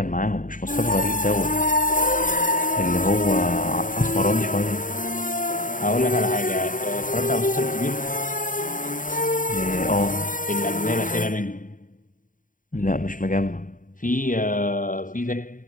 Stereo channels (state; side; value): late; right; 0.39 ms